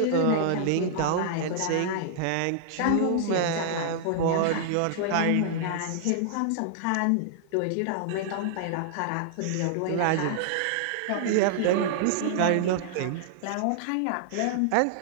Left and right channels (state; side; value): different; both; correlation -0.01